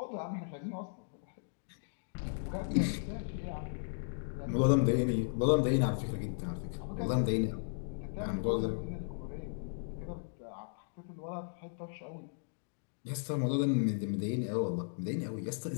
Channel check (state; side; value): silent; right; digital silence